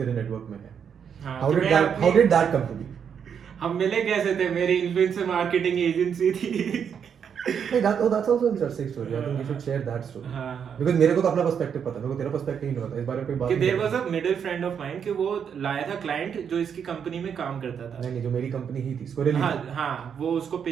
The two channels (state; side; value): quieter; left; 7.6 dB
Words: नेटवर्क में है। How did that come to be? हम मिले कैसे थे? मेरी इन्फ्लुएंसर मार्केटिंग एजेंसी थी। that's also an interesting story. I think you should share that story. Because मेरे को तो अपना पर्सपेक्टिव पता है, मेरे को तेरा पर्सपेक्टिव नहीं पता। इस बारे में कोई बात नहीं। There was a middle friend of mine कि वो लाया था क्लाइंट जो इसकी कंपनी में काम करता था। नहीं, जो मेरी कंपनी ही थी, स्क्वायरली। हाँ, वो उसको